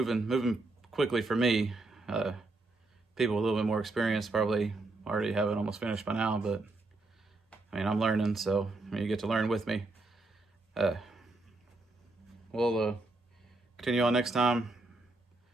quickly for me. People with a little bit more experience probably already have it almost finished by now, but I mean, I'm learning, so you get to learn with me. We'll continue on next time,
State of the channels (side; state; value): left; quieter; 3.2 dB